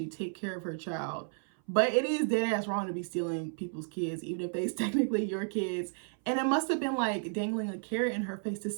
take care of her child. But it is dead ass wrong to be stealing people's kids, even if they's technically your kids. And it must have been like dangling a carrot in her face to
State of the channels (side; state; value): left; silent; 56 dB below the other